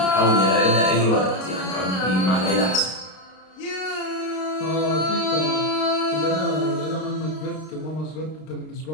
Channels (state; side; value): late; right; 32 ms